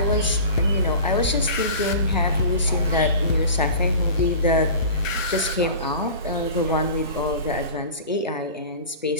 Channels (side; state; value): both; inverted; correlation -0.37